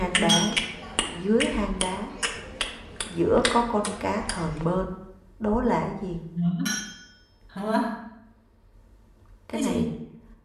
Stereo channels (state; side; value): identical; both; correlation 1.00